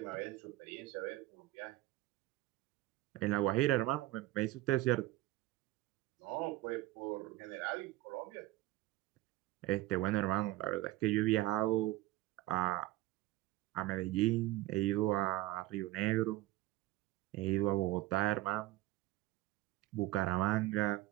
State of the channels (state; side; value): quieter; left; 17.1 dB